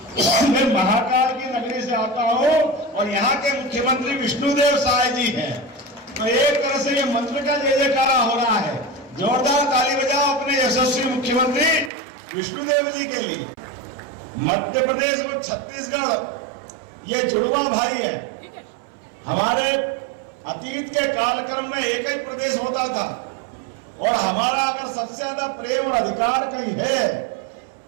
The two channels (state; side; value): drops out; left; at 11.9 s